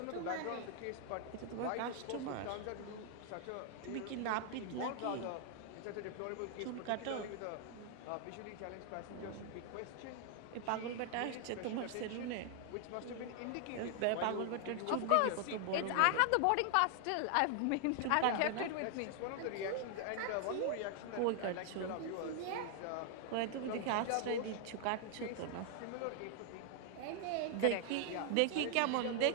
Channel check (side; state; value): both; different; correlation 0.00